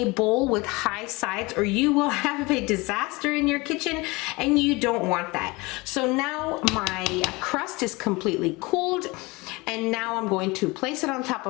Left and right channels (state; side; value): quieter; right; 24.2 dB